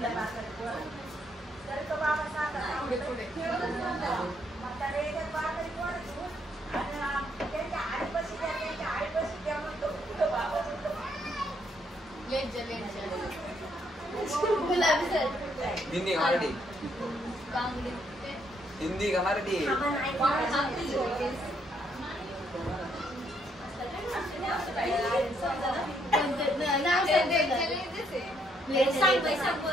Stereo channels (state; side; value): normal; both; correlation 0.72